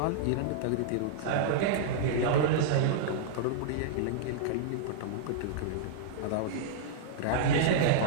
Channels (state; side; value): different; both; correlation -0.02